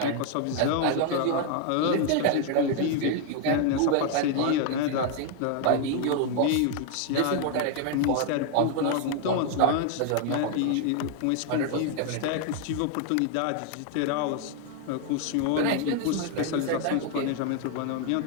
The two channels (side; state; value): both; different; correlation 0.01